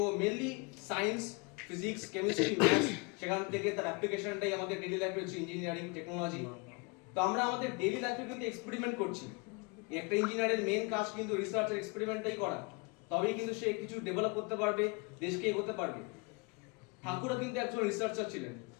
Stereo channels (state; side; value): quieter; right; 30.0 dB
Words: mainly science, physics, chemistry, maths, সেখান থেকে তার অ্যাপ্লিকেশনটাই আমাদের ডেইলি লাইফে হচ্ছে ইঞ্জিনিয়ারিং টেকনোলজি। তো আমরা আমাদের ডেইলি লাইফে কিন্তু এক্সপেরিমেন্ট করছি। একটা ইঞ্জিনিয়ারের মেন কাজ কিন্তু রিসার্চ আর এক্সপেরিমেন্টটাই করা, তবেই কিন্তু সে কিছু ডেভেলপ করতে পারবে, দেশকে এগোতে পারবে। ঠাকুরও কিন্তু একজন রিসার্চার ছিলেন,